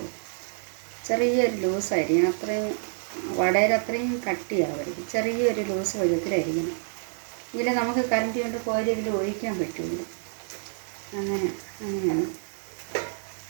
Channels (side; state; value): left; silent; digital silence